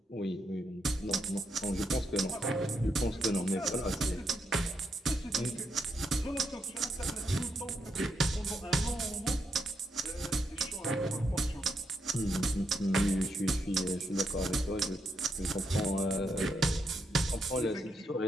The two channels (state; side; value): normal; both; correlation 0.80